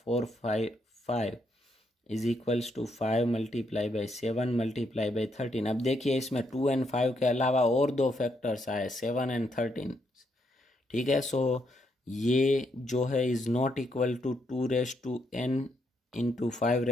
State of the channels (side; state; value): both; normal; correlation 0.77